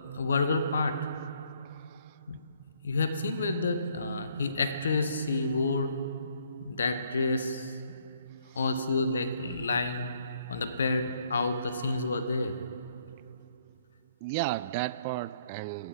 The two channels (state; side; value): inverted; both; correlation -0.66